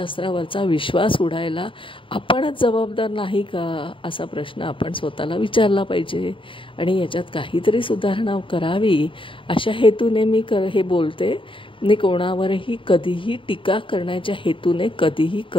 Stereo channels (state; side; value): late; right; 0.25 ms